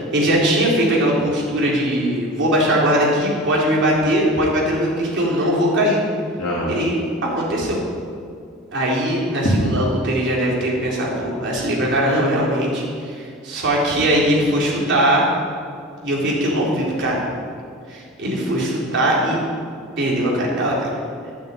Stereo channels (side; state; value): both; normal; correlation 0.32